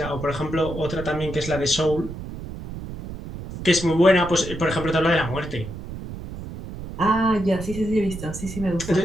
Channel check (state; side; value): noise; right; rumble, 10 dB below the sound